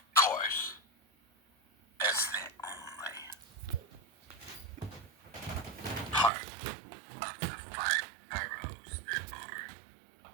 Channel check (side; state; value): left; drops out; at 6.3 s